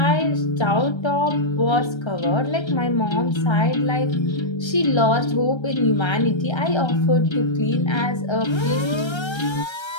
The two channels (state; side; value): late; right; 1.3 ms